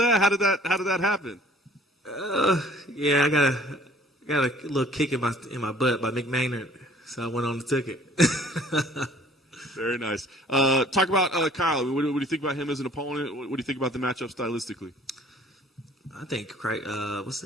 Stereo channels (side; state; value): both; normal; correlation 0.54